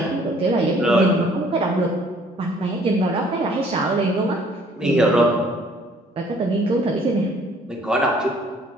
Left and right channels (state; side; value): normal; both; correlation 0.59